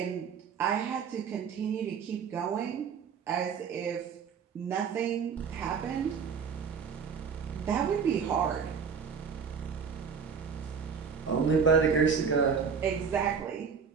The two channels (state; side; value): quieter; left; 6.3 dB